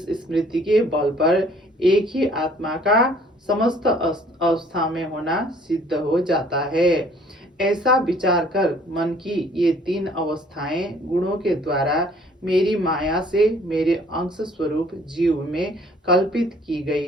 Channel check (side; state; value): both; normal; correlation 0.57